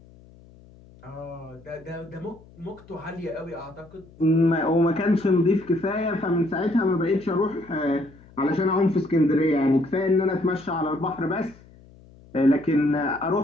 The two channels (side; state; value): left; noise; hum, 24 dB below the sound